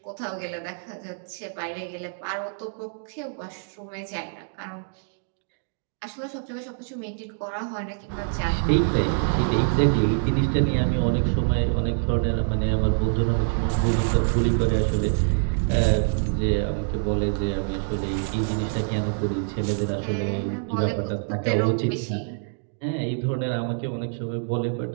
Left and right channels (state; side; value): silent; left; 61 dB below the other